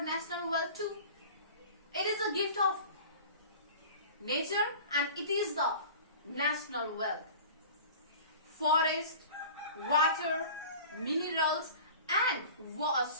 national wealth too. It is a gift of nature and it is the national wealth. Forest, water, minerals and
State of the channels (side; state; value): both; inverted; correlation -0.40